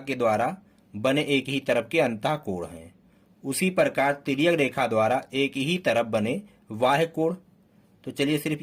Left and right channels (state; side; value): identical; both; correlation 1.00